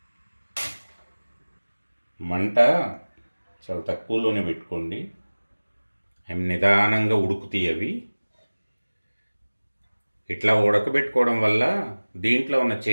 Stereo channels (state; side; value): inverted; both; correlation -1.00